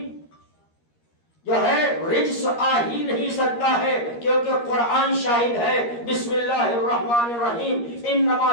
جو ہے رجس آ ہی نہیں سکتا ہے، کیونکہ قرآن شاہد ہے۔ بسم اللہ الرحمن الرحیم،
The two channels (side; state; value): right; late; 13 ms